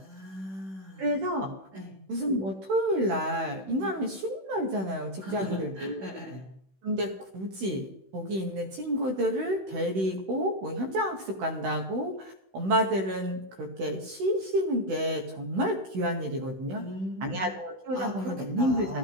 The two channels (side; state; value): left; late; 16 ms